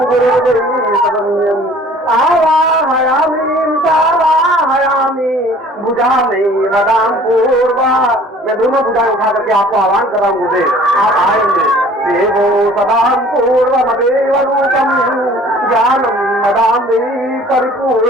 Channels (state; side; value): normal; both; correlation 0.51